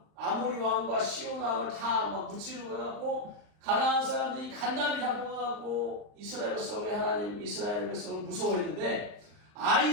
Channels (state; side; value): late; left; 39 ms